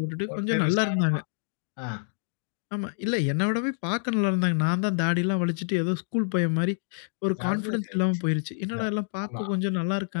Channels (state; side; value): silent; right; digital silence